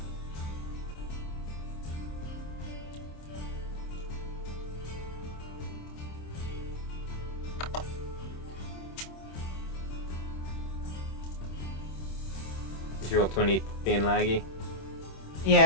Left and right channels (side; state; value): right; late; 26 ms